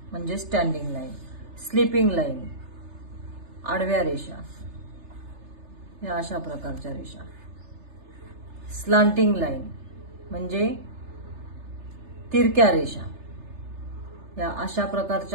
म्हणजे स्टँडिंग लाईन, स्लीपिंग लाईन आडव्या रेषा, या अशा प्रकारच्या रेषा, स्लांटिंग लाईन म्हणजे तिरक्या रेषा, या अशा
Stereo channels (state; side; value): late; left; 3.3 ms